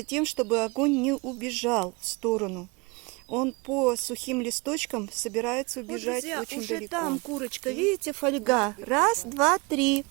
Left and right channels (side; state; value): left; quieter; 27.6 dB